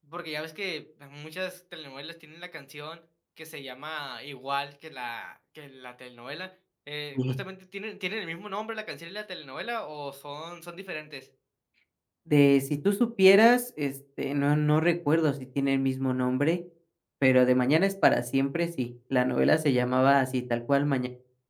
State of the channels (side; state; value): both; identical; correlation 1.00